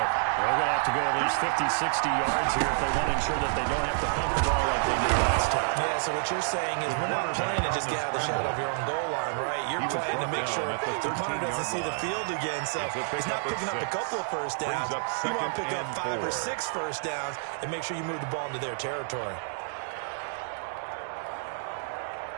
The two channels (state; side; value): silent; left; digital silence